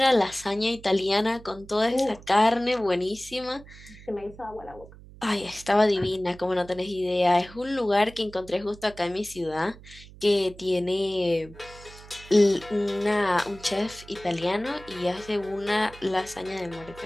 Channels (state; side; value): noise; right; hum, 19 dB below the sound